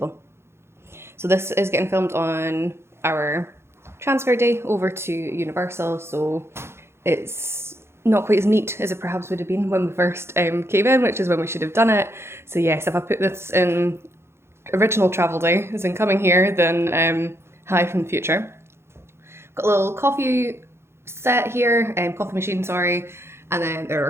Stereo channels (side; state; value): left; late; 0.12 ms